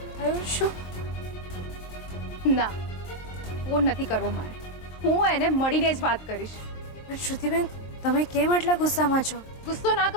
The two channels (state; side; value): late; right; 23 ms